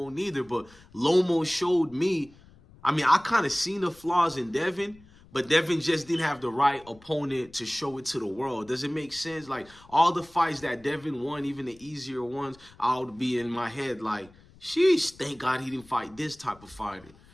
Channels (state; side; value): noise; left; rumble, 25 dB below the sound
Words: neither, but Lomo showed me. I mean, I kind of seen the flaws in Devin, but Devin just didn't have the right opponent to show it to the world. Does it make sense? Like, all the fights that Devin won, even the easier ones, I would be in my head like, sheesh, thank God he didn't fight this type of fighter.